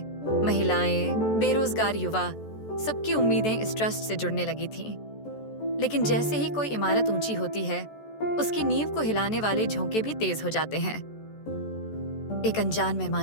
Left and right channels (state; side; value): late; right; 14 ms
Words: महिलाएं, बेरोजगार युवा, सबकी उम्मीदें इस ट्रस्ट से जुड़ने लगी थीं। लेकिन जैसे ही कोई इमारत ऊंची होती है, उसकी नींव को हिलाने वाले झोंके भी तेज हो जाते हैं। एक अनजान